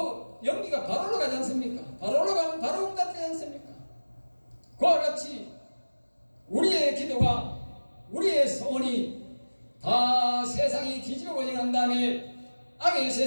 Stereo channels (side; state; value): both; inverted; correlation -1.00